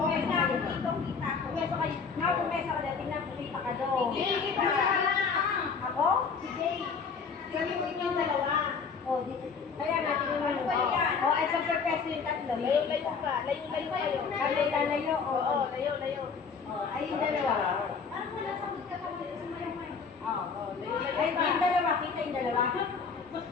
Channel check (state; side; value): quieter; right; 5.6 dB